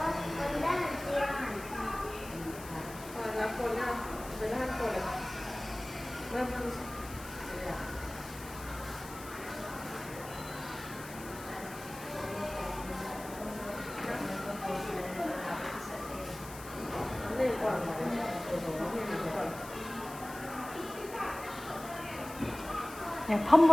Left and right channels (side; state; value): left; noise; hiss, 15 dB below the sound